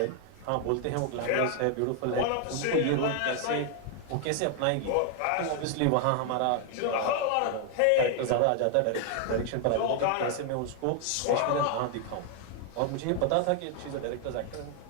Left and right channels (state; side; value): different; both; correlation 0.00